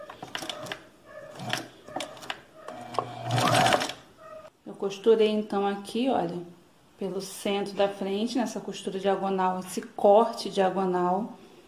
Eu costurei então aqui, olha, pelo centro da frente, nessa costura diagonal, esse corte diagonal,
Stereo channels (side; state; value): both; identical; correlation 1.00